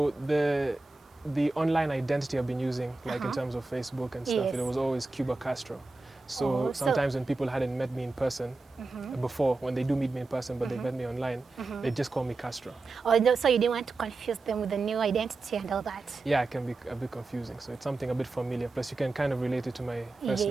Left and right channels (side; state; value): left; quieter; 3.4 dB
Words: the online identity I've been using, like in terms of Facebook and stuff, it was always Cuba Castro. So sometimes when people hadn't met me in person before, when they do meet me in person, but they met me online, they just call me Castro. Oh, so you didn't want to confuse them with the new identity and all that? Yeah, it can be a bit confusing. So it's something a bit familiar. Plus you can kind of relate it to my first